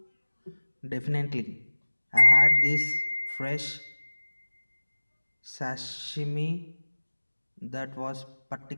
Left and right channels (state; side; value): inverted; both; correlation -1.00